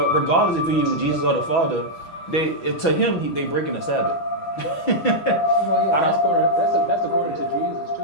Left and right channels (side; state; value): right; late; 6.1 ms